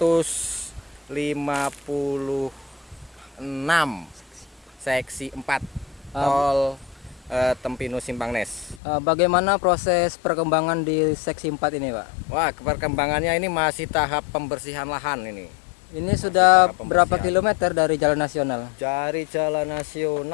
seksi 4 Uh, tol Tempinu Simpangnes. Bagaimana proses perkembangan di seksi 4 ini, Pak? Wah, perkembangannya ini masih tahap pembersihan lahan ini. Ini sudah tahap berapa pembersihan. kilometer dari jalan nasional? Dari jalan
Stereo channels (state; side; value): drops out; right; at 8.8 s